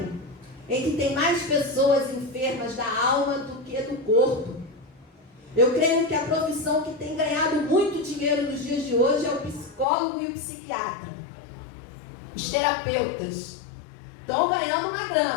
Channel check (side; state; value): right; drops out; at 9.9 s